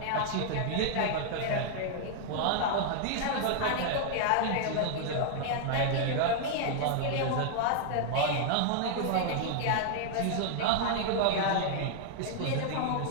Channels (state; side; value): different; both; correlation 0.00